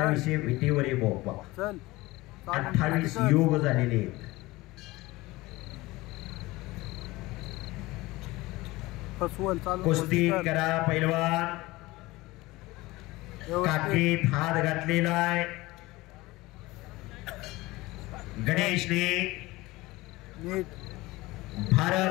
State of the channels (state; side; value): quieter; right; 20.3 dB